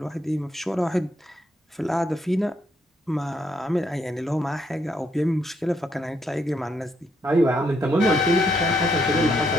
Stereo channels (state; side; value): normal; both; correlation 0.74